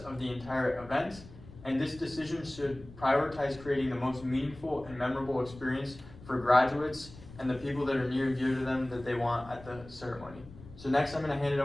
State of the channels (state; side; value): noise; left; rumble, 18 dB below the sound